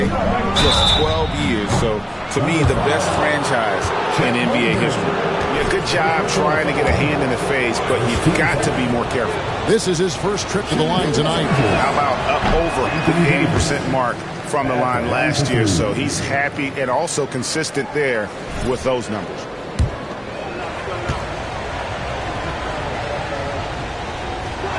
just 12 years. So, to me, the best franchise in NBA history. Yeah, good job trying to get a hand in the face, but you've got to be more careful. This is his first trip to the line tonight. How about up over the 80% mark from the line last year? So he's happy and also consistent there with those numbers.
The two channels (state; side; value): identical; both; correlation 1.00